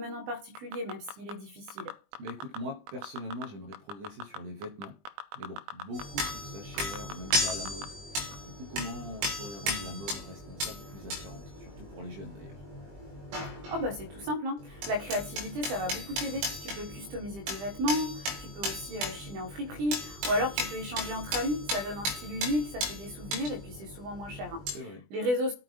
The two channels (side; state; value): left; late; 20 ms